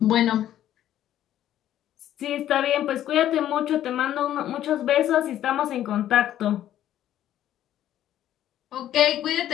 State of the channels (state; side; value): quieter; right; 11.9 dB